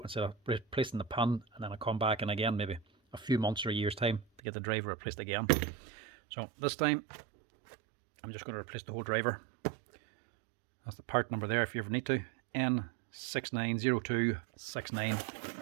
instead of replacing the pin and then I come back in again maybe a few months or a year's time to get the driver replaced again. So this time I'm just going to replace the whole driver. That's the part number there if you ever need to,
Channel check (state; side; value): drops out; left; at 4.4 s